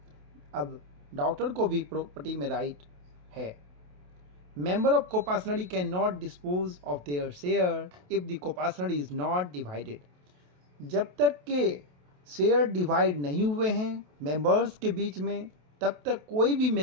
अब डॉक्टर को भी प्रॉपर्टी में राइट है। Member of Kopasnari cannot dispose of their share if the Kopasnari is not divided. जब तक के शेयर डिवाइड नहीं हुए हैं मेंबर्स के बीच में, तब तक कोई भी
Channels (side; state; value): left; late; 28 ms